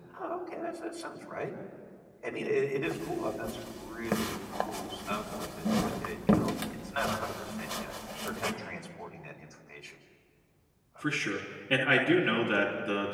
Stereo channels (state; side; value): identical; both; correlation 1.00